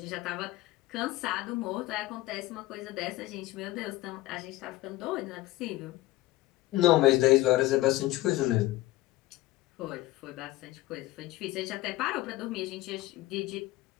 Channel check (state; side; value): quieter; right; 17.8 dB